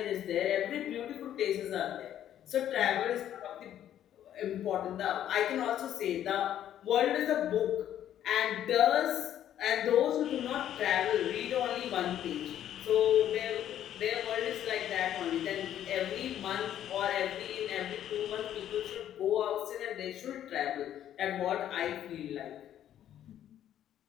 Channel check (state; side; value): quieter; right; 11.0 dB